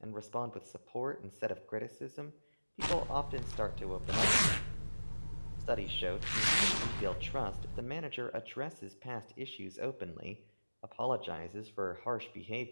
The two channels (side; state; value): both; inverted; correlation -1.00